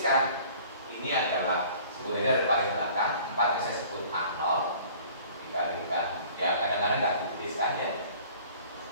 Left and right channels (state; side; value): inverted; both; correlation -0.50